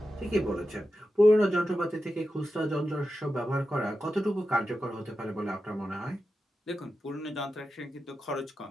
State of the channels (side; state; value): both; normal; correlation 0.91